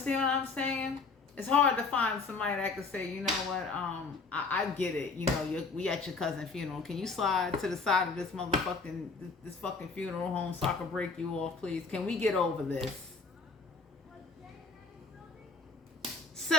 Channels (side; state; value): right; quieter; 4.3 dB